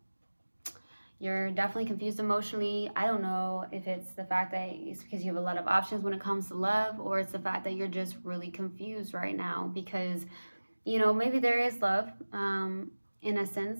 You're definitely confused emotionally. I don't know if it's the fact that it's because you have a lot of options when it comes to love, or it's the fact that you're just really confused right now because, you know, maybe there is love in a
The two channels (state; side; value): inverted; both; correlation -1.00